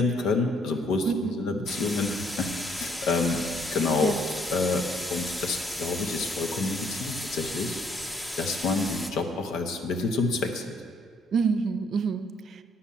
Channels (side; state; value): both; normal; correlation 0.66